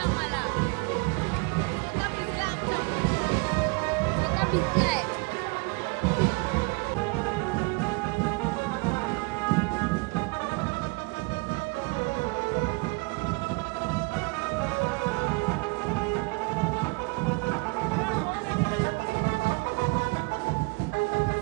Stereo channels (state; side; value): quieter; left; 29.2 dB